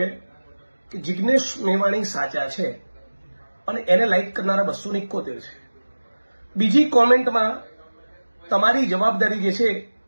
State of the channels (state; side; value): inverted; both; correlation -1.00